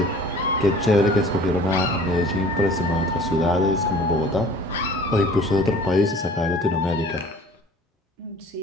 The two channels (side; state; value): both; normal; correlation 0.48